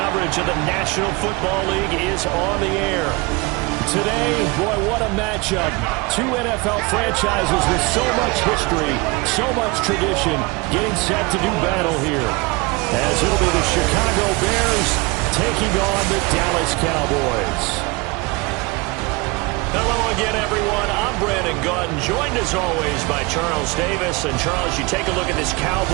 of the National Football League is on the air. Today, boy, what a matchup. Two NFL franchises with so much history, so much tradition, getting set to do battle here. As it'll be the Chicago Bears taking on the Dallas Cowboys. Hello again, everyone. I'm Brandon Gautin, joined as always by Charles Davis. And Charles, you take a look at this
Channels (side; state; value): left; quieter; 25.7 dB